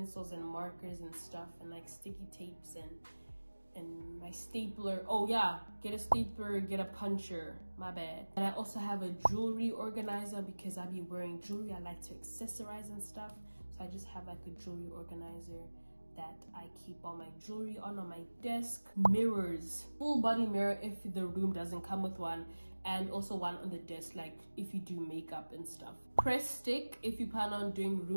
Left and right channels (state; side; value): inverted; both; correlation -1.00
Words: and markers and stuff and like sticky tapes and my stapler. Oh yeah, get a stapler, get a puncher, my bad. And I also have a jewelry organizer because I be wearing jewelry. I like to accessorize and stuff, so I just have like a jewelry organizer that I keep all my jewelry on my desk. Mirrors, full body mirror if the room doesn't come with one, and also one on the desk like if you do makeup and stuff. Press stick, if you plan on doing